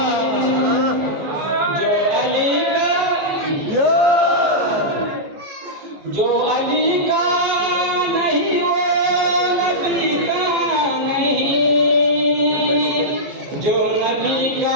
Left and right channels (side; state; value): left; late; 14 ms